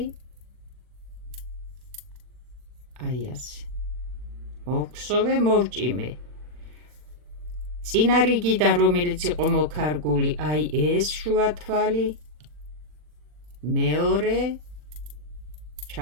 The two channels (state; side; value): late; left; 40 ms